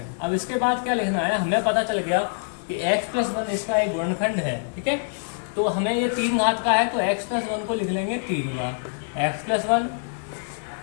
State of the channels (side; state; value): right; silent; digital silence